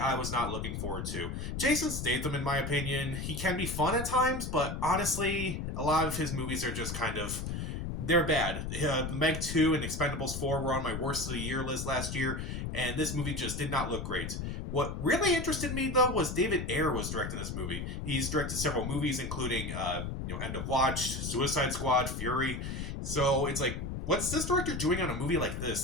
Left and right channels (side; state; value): left; noise; rumble, 4 dB below the sound